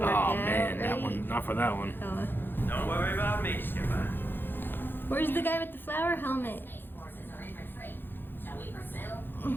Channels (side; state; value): right; late; 0.099 ms